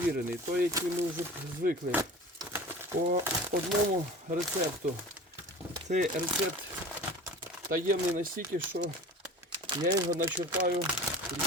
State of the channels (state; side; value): normal; both; correlation 0.38